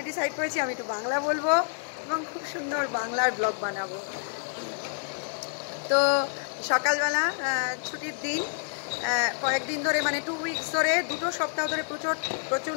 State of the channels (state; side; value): silent; right; digital silence